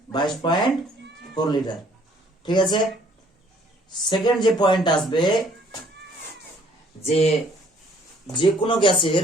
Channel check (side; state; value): both; normal; correlation 0.60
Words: 22.4 লিটার। ঠিক আছে, সেকেন্ড যে পয়েন্ট আসবে, যে যে কোনো গ্যাসের